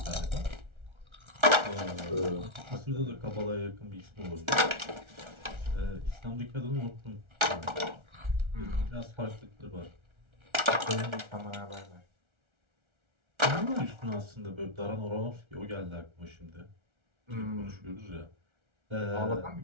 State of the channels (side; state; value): left; late; 1.3 ms